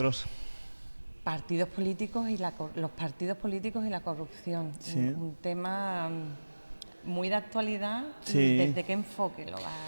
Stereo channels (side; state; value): both; inverted; correlation -1.00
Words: Partidos políticos y los partidos políticos y la corrupción, Sí. un tema muy de actualidad. Sí. ¿Desde qué enfoque lo